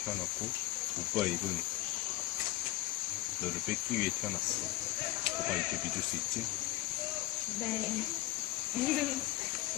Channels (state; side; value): quieter; right; 17.1 dB